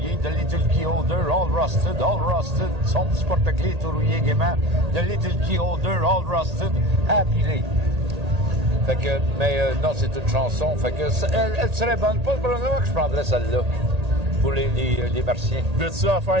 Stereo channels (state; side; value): late; left; 1.8 ms